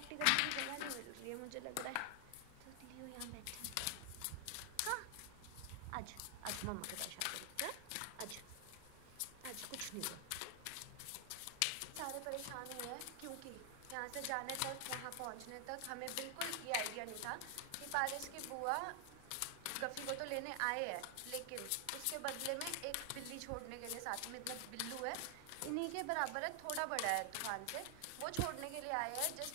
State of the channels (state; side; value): different; both; correlation 0.00